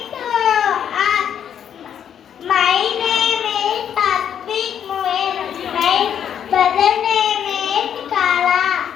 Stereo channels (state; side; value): quieter; right; 8.9 dB